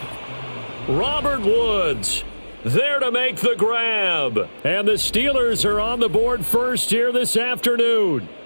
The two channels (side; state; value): both; inverted; correlation -1.00